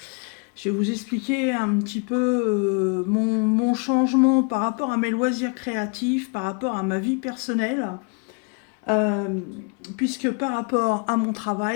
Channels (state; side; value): quieter; right; 35.0 dB